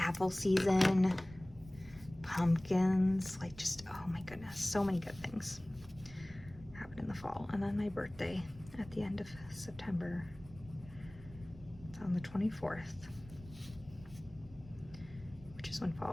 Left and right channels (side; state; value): right; noise; rumble, 18 dB below the sound